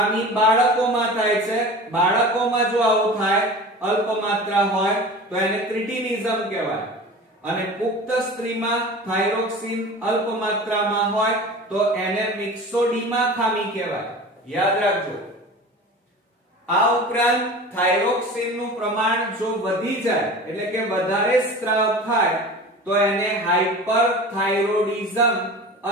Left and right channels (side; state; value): both; normal; correlation 0.36